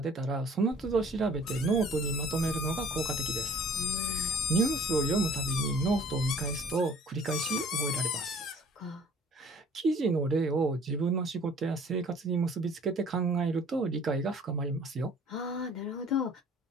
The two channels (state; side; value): normal; both; correlation 0.53